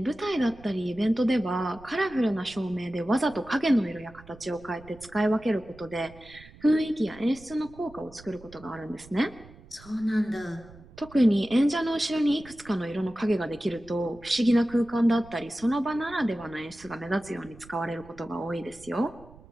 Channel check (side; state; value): right; noise; rumble, 21 dB below the sound